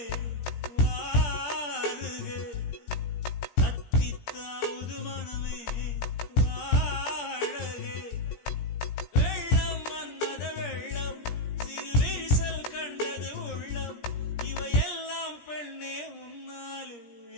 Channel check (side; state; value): right; late; 17 ms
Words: வாருக, தத்தித்தாவது மனமே வாழக. வெள்ளம் மன்மத வெள்ளம், சிறு விரிசல் கண்டது உள்ளம், இவையெல்லாம் பெண்ணே உன்னாலே.